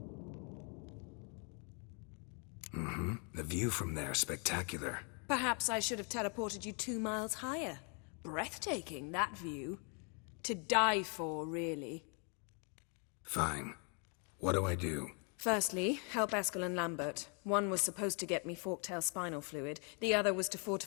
Mm-hmm. The view from there, spectacular. Perhaps I should have teleported you 2 miles higher. Breathtaking, that view. To die for, really. Fine. What do I do? Firstly, help Eskel and Lambert. One was supposed to get me forktail spinal fluid. The other was to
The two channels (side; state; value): right; quieter; 37.8 dB